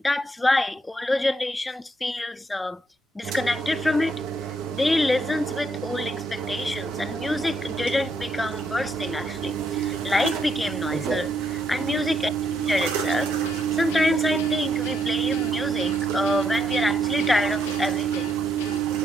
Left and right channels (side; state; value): both; normal; correlation 0.75